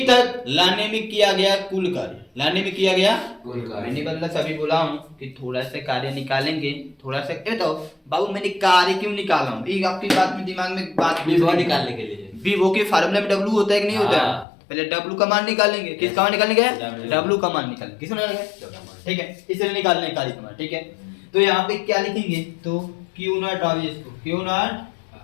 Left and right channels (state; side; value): drops out; right; at 14.5 s